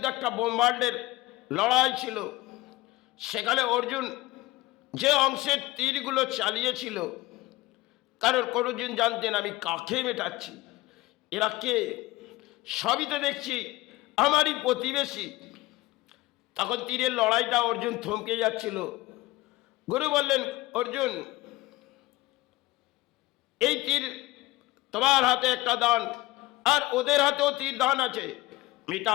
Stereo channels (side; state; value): right; quieter; 19.2 dB